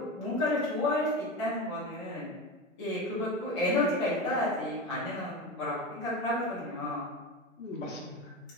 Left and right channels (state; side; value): normal; both; correlation 0.23